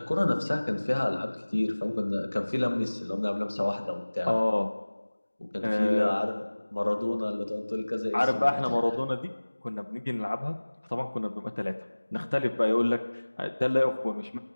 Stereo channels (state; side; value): inverted; both; correlation -1.00